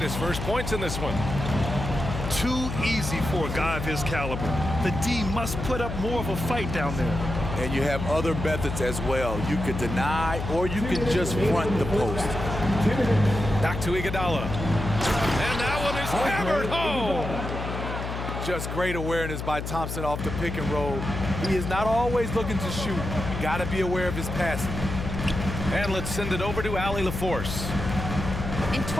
first points in this one. Too easy for a guy of his caliber. The D must put up more of a fight down there. And you have other methods as well. You could deny or you could just front the post. Back to Iguodala. And that one is hammered home. Just great awareness by Thompson off the pick and roll. He is not always looking to shoot. You got to be aware of his passing. And let's send it over to Allie LaForce. In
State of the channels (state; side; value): noise; left; hum, 5 dB below the sound